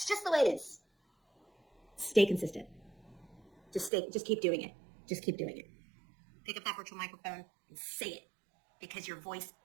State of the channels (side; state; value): left; drops out; at 3.9 s